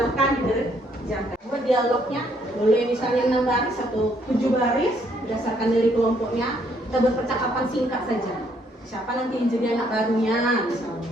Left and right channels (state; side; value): normal; both; correlation 0.68